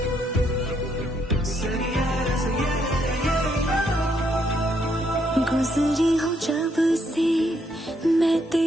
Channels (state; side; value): normal; both; correlation 0.74